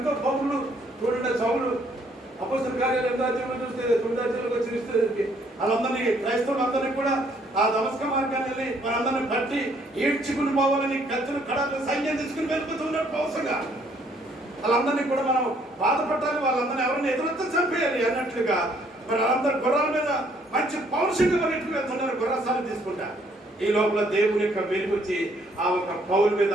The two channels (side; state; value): both; normal; correlation 0.66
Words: పౌరులు చూడండి. సౌలు అపోస్తల కార్యాలు 8వ అధ్యాయంలో చూస్తే 9వ అధ్యాయంలోకి వచ్చి వాళ్ళందరినీ క్రైస్తవులందరినీ కూడా ఆ దమస్క మార్గాన్ని వెళ్ళి వాళ్ళందరినీ బట్టి ఈడ్చుకుని పోవాలని కత్తులు కడాలు సైన్యం తీసుకుని వెళ్ళిపోతున్నారు పౌరుషంగా. వాళ్ళందరినీ కూడా మనం బాధపడాలి, వాళ్ళందరినీ ఎవరిని ఎదురొత్త చంపేయాలి అన్నట్లుగా మరి వాళ్ళందరూ గుర్రాల మీద మంచి పౌరుషంగా పరిగెట్టుకు వెళ్తున్నారు, గుర్రసాలు తీసుకుంటా. ఈ లోపల దేవుని యొక్క వెలుగు వచ్చి ఆ ఒక పౌరు మీద,